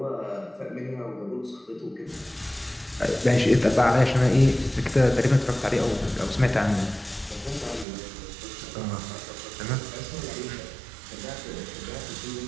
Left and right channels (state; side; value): drops out; left; at 7.9 s